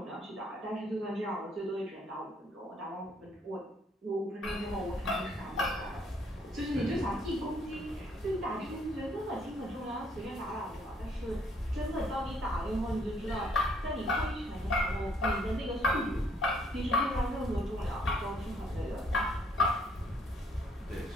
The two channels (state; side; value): normal; both; correlation 0.66